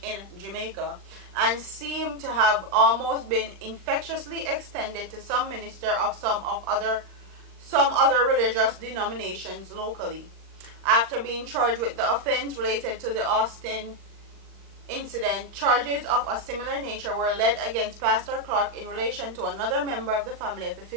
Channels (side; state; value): left; late; 39 ms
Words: in Jamaica, and seemed to have almost been infectiously extended to some ministers of some other religious denominations locally. After being charged with the offense related to the Austin incident, charges of a similar nature were led against Pastor Clark in relation to another member of the family of the